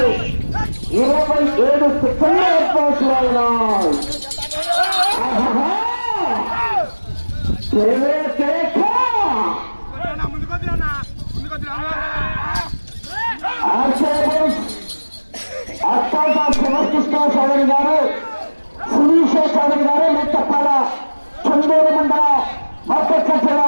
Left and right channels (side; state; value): both; inverted; correlation -1.00